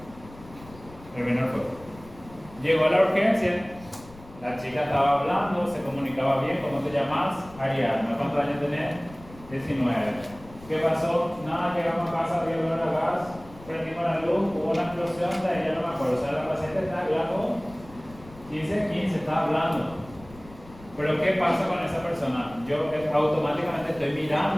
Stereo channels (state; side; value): noise; left; rumble, 20 dB below the sound